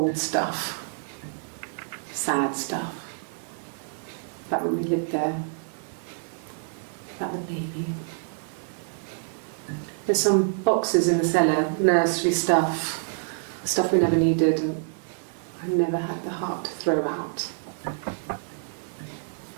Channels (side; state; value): left; silent; digital silence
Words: stuff, sad stuff, about when we lived there, about the baby. There's some boxes in the cellar, nursery stuff we never needed and I never had the heart to throw out.